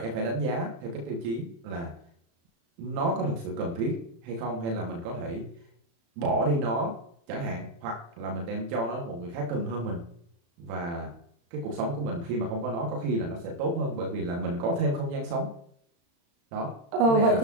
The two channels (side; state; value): left; late; 35 ms